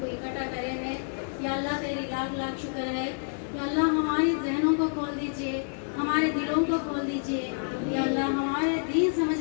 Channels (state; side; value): silent; right; digital silence